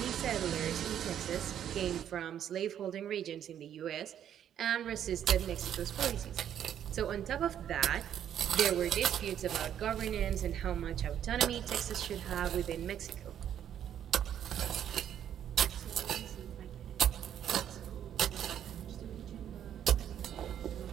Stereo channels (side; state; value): left; quieter; 9.9 dB